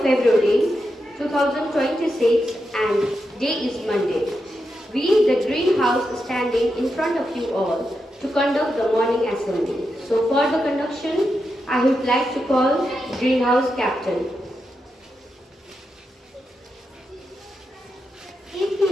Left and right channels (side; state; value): both; normal; correlation 0.86